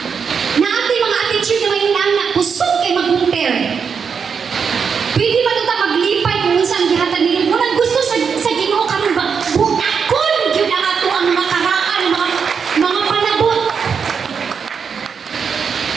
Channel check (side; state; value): left; quieter; 6.3 dB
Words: Na ating mga attitude na may inaanak, kusog kay mag-compare. Pwede ba ito maglipay kung unsa ang gihatag nila? Unang gusto sa Ginoo karon ba? Butakon yun ang ato ang mga karaan, mga panabot.